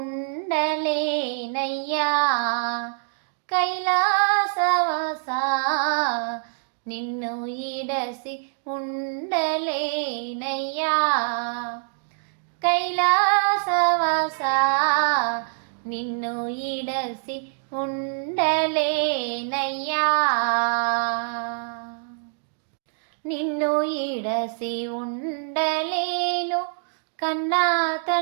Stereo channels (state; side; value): silent; left; digital silence